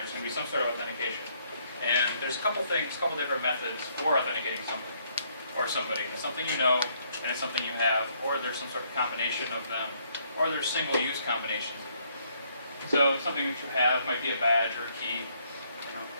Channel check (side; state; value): both; inverted; correlation -0.69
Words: going to be some sort of authentication. And there's a couple different methods for authenticating something or somebody. It's something you know, and it's something you have, or there's some sort of combination of them, or there's single-use combinations of them. So something that you have might be a badge or a key.